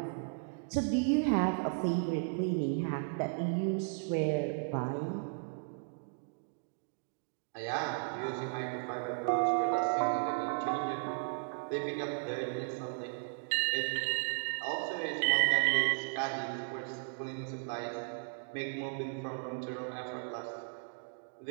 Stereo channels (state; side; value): silent; left; digital silence